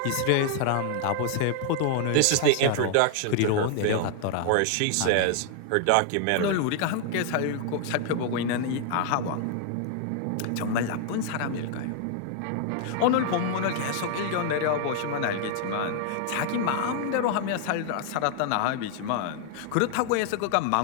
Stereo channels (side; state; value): both; different; correlation 0.00